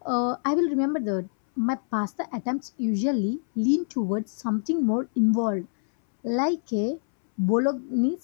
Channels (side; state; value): right; silent; 61 dB below the other